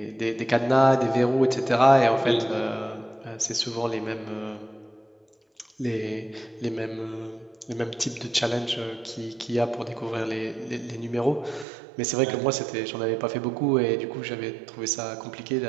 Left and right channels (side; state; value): left; drops out; at 11.7 s